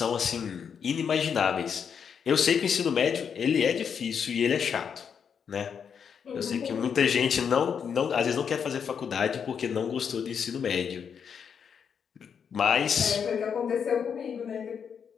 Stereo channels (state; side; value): quieter; right; 7.2 dB